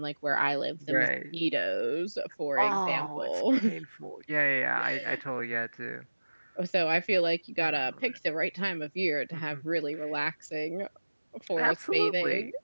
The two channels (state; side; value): inverted; both; correlation -1.00